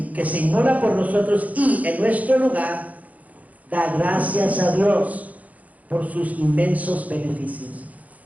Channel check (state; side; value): late; left; 0.074 ms